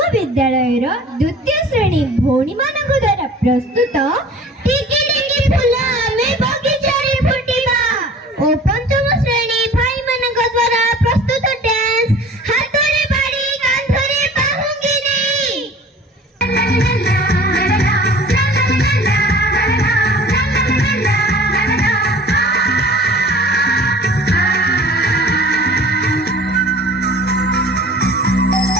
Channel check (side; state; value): both; normal; correlation 0.45